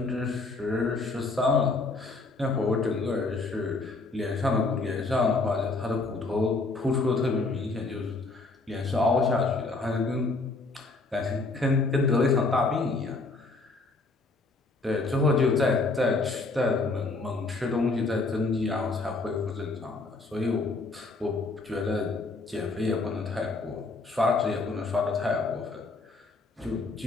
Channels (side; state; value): right; quieter; 3.5 dB